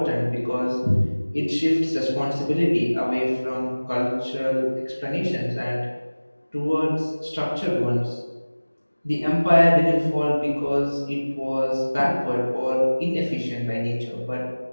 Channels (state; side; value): inverted; both; correlation -1.00